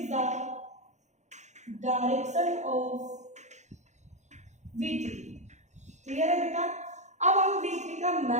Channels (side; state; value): left; late; 0.34 ms